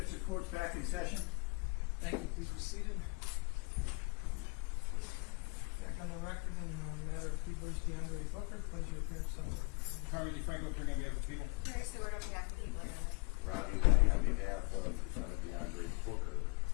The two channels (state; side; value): quieter; right; 28.7 dB